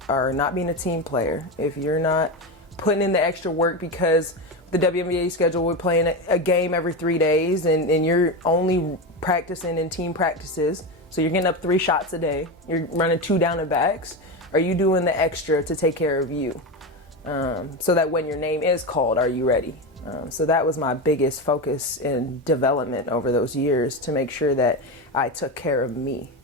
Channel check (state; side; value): normal; both; correlation 0.17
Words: are not being a team player, if you're not putting in the extra work, because the WNBA schedule, we're playing a game every 3 days, and you're only practicing in team practices. So you're getting up 3 shots a day. You're running 2 down and backs. Are you doing the extra to take care of you? So that when your name is called, are you ready? So that was my biggest focus in development over those years, to make sure that I took care of me.